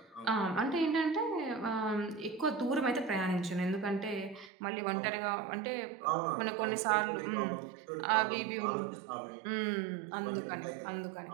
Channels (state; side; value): drops out; left; at 4.5 s